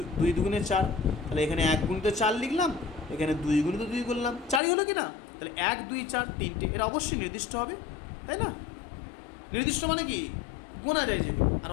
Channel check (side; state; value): right; drops out; at 4.6 s